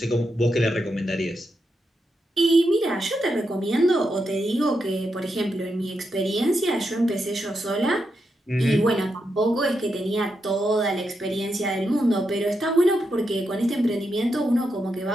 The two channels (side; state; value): both; normal; correlation 0.84